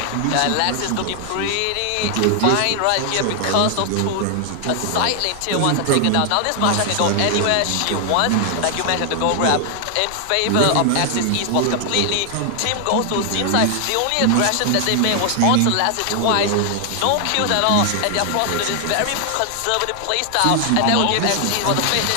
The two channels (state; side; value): different; both; correlation 0.00